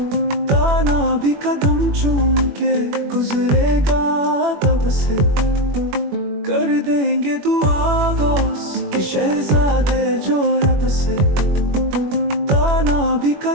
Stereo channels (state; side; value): late; left; 21 ms